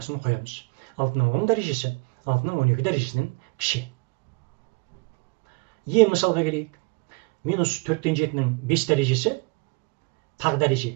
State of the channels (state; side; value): quieter; left; 29.8 dB